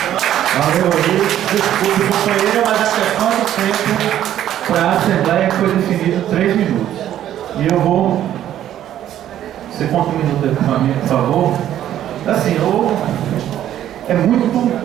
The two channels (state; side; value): quieter; left; 11.6 dB